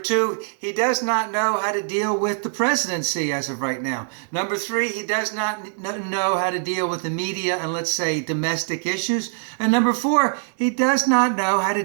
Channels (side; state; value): left; silent; digital silence